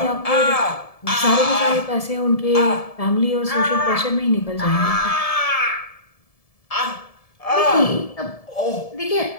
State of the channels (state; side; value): late; right; 1.7 ms